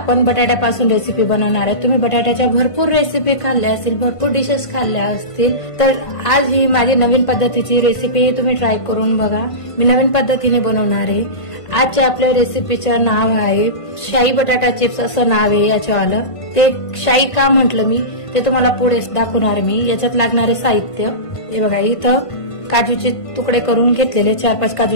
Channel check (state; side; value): late; right; 1.5 ms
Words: बटाट्यापासून रेसिपी बनवणार आहे। तुम्ही बटाट्याच्या भरपूर रेसिपी खाल्ल्या असतील, भरपूर डिशेस खाल्ल्या असतील, तर आज ही माझी नवीन पद्धतीची रेसिपी तुम्ही ट्राय करून बघा। मी नवीन पद्धतीने बनवणार आहे। आजच्या आपल्या रेसिपीचं नाव आहे शाही बटाटा चिप्स असं नाव आहे याच्यावालं। ते शाही का म्हटलं मी ते तुम्हाला पुढे दाखवणार मी। याच्यात लागणारे साहित्य हे बघा, इथं काजूचे तुकडे करून घेतलेले 4-5